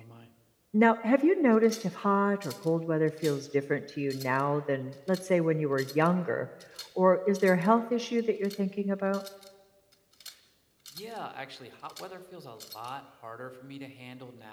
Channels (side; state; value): both; identical; correlation 1.00